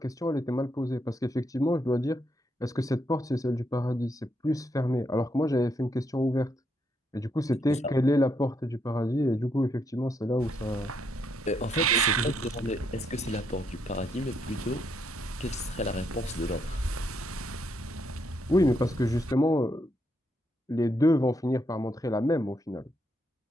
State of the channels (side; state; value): both; normal; correlation 0.77